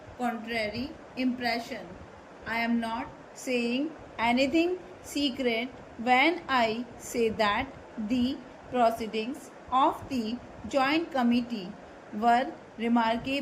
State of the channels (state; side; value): identical; both; correlation 1.00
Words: contrary impression. I am not saying anything secret when I say that the proceedings of the joint committee were